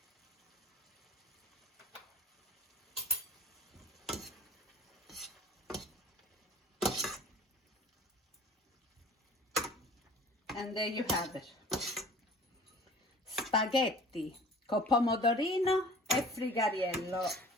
And there you have it. Spaghetti con pomodorino e frigariello.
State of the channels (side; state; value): both; normal; correlation 0.46